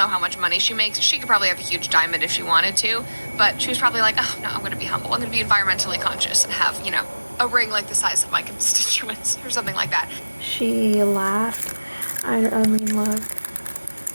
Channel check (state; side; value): inverted; both; correlation -1.00